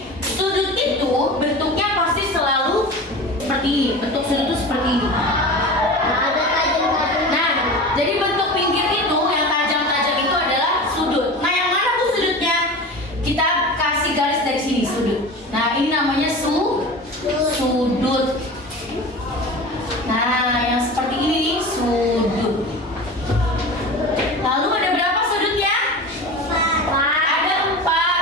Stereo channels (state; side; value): normal; both; correlation 0.32